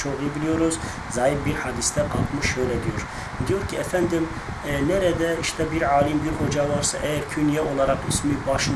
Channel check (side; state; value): both; identical; correlation 1.00